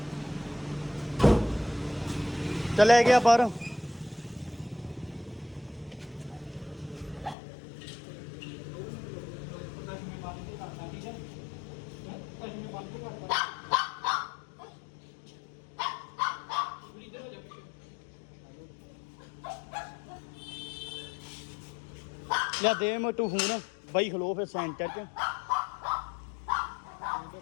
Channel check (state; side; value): drops out; right; at 7.4 s